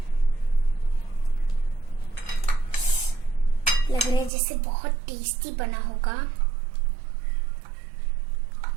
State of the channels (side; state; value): left; drops out; at 4.3 s